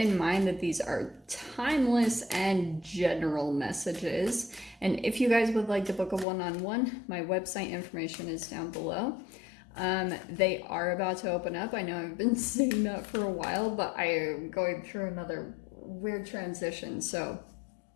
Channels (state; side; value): drops out; right; at 6.2 s